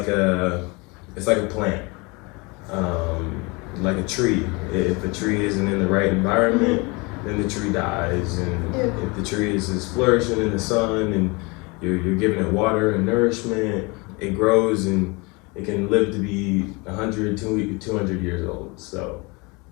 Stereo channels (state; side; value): quieter; right; 27.3 dB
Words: a plant, like a tree. If a tree isn't in the right environment, then the tree dies. And if the tree is flourishing in the sun and you're giving it water and nourishment, it grows and it can live to be 100, 200 years old. So,